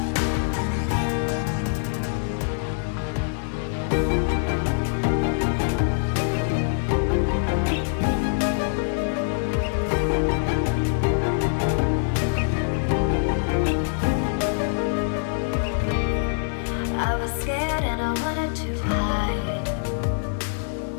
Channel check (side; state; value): right; silent; digital silence